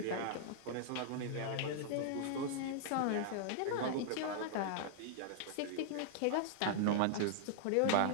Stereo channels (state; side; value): different; both; correlation -0.01